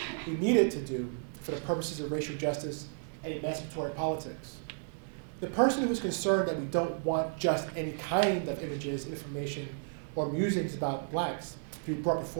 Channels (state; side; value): silent; left; digital silence